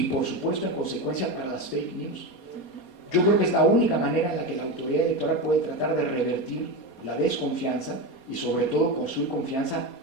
por supuesto, en consecuencia para las fake news. Yo creo que es la única manera en la que la autoridad electoral puede tratar de revertir la desconfianza y, sobre todo, construir confianza,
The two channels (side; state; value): right; late; 4.2 ms